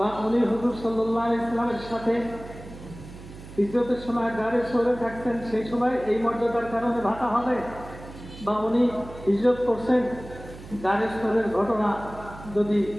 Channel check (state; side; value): noise; right; hum, 16 dB below the sound